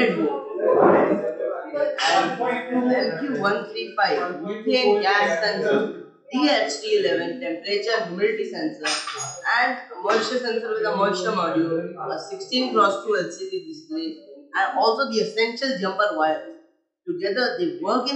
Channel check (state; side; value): identical; both; correlation 1.00